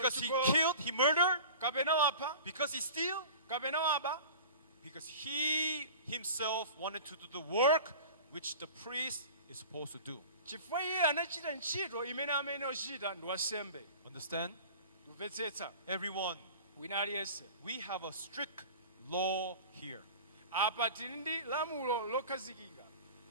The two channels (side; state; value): both; inverted; correlation -0.39